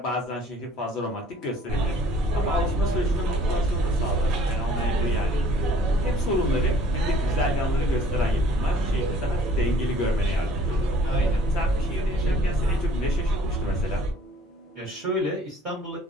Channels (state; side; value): normal; both; correlation 0.55